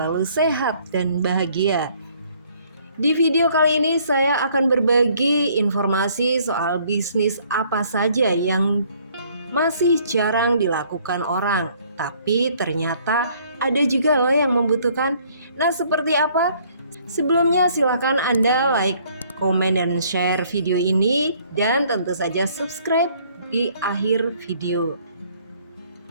sehat dan bahagia. Di video kali ini saya akan berbagi informasi soal bisnis apa saja yang masih jarang dilakukan orang, tapi ternyata ada juga loh yang membutuhkan. Nah, seperti apa? Sebelumnya silakan Anda like, komen, dan share video ini, dan tentu saja subscribe di akhir video.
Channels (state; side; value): inverted; both; correlation -0.61